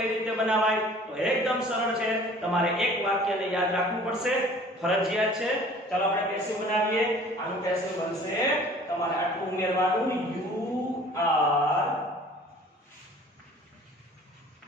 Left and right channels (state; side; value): normal; both; correlation 0.49